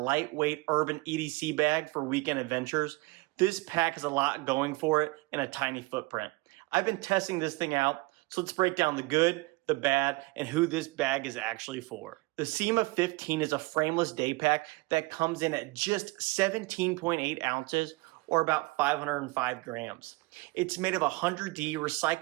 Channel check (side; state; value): left; quieter; 23.8 dB